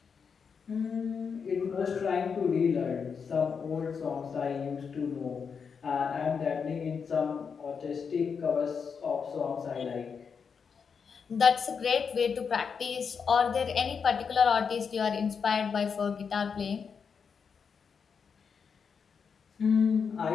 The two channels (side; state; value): right; quieter; 6.1 dB